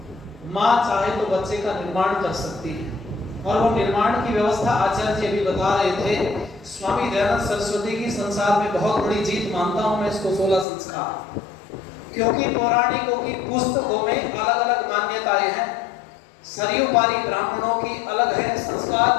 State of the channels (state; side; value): drops out; right; at 10.7 s